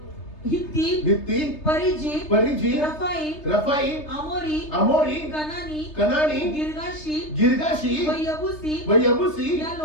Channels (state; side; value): late; right; 3.3 ms